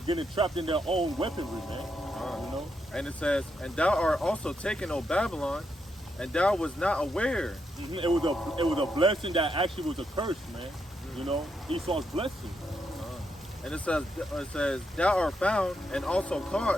trapped in their own weaponry, man. You know? And it says, and thou art also taken, O Babylon, and thou was not aware. It was a blessing that actually was a curse, man. You know, Esau's blessing. And it says, thou art found and also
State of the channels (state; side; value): normal; both; correlation 0.81